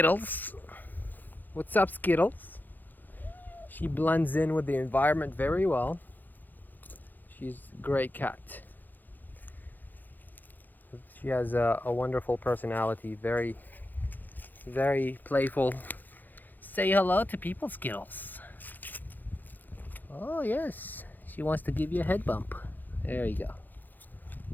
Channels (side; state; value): right; late; 0.086 ms